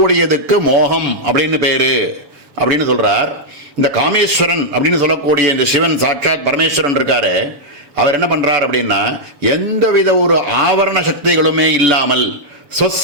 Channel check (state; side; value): late; left; 7.2 ms